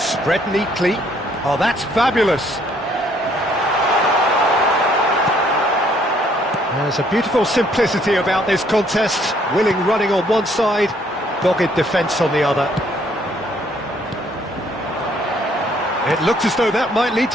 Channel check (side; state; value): both; normal; correlation 0.65